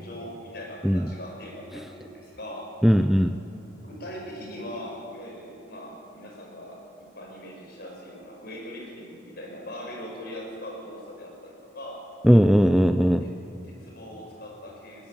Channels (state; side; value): normal; both; correlation 0.95